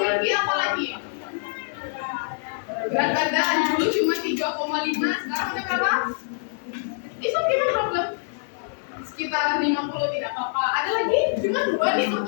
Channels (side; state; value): right; silent; 61 dB below the other